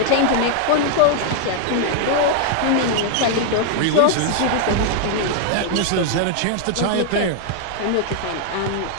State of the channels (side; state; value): both; different; correlation 0.00